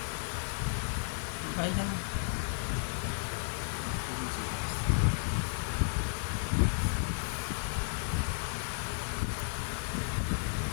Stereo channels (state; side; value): silent; right; digital silence